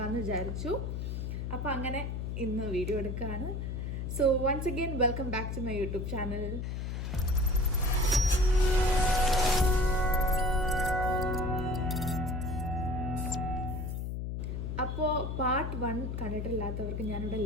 വിചാരിച്ചു. അപ്പോൾ അങ്ങനെ ഇന്ന് വീഡിയോ എടുക്കുകയാണ്. So once again welcome back to my YouTube channel. അപ്പോൾ പാർട്ട് 1 കണ്ടിട്ടില്ലാത്തവർക്ക് ഞാനിവിടെ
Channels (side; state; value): left; noise; hum, 3 dB below the sound